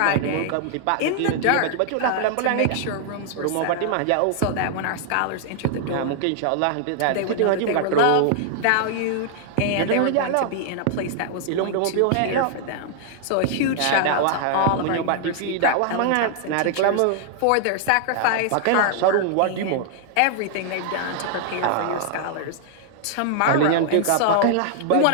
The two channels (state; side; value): different; both; correlation -0.01